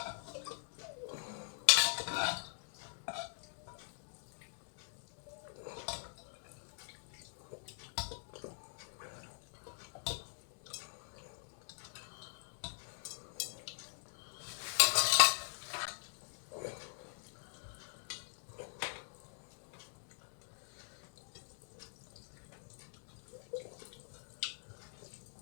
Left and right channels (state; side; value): silent; right; digital silence